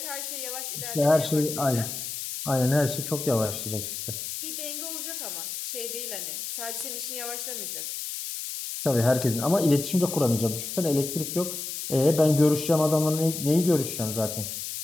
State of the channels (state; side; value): noise; left; hiss, 6 dB below the sound